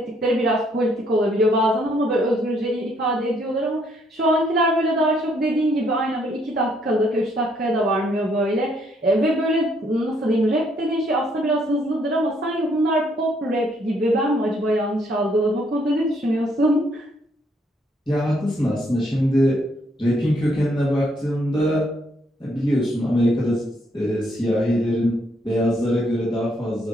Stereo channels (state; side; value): normal; both; correlation 0.70